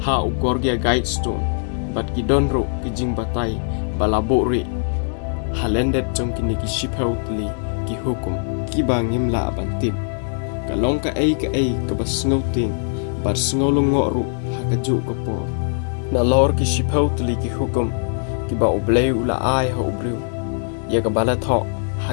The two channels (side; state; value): right; silent; digital silence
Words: ha ugorgia guidestone bat ki donro ki jingbatai bala bori halendet jong kine ki sipau tuli ki hukum ki bangim la bantim kalong ka ai ka basngau ting bar sngaw longo ru hakaju ko po na lor ki sipau tuli ki hukum ki ba ublei ula ai ha ubriu ya ka bala tho ha